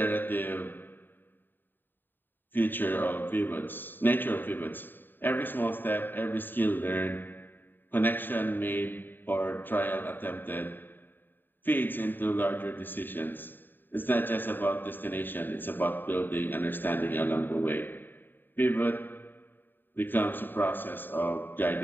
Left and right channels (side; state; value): right; late; 0.093 ms